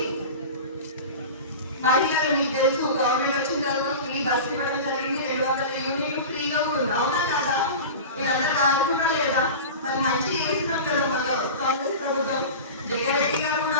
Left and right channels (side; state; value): both; inverted; correlation -0.31